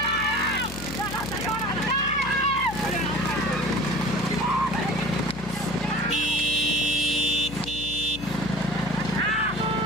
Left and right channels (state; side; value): noise; left; hum, 12 dB below the sound